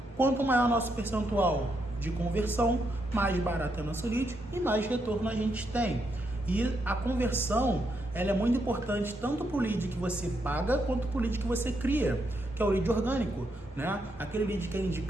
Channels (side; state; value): both; normal; correlation 0.79